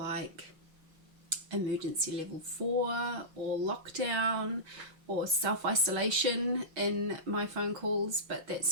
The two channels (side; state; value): left; late; 6.3 ms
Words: emergency level 4 or lockdown or self-isolation in my phone calls, but that